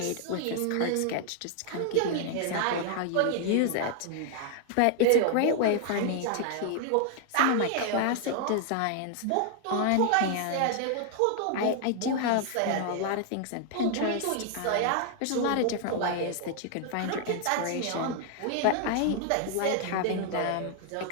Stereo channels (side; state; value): both; different; correlation 0.00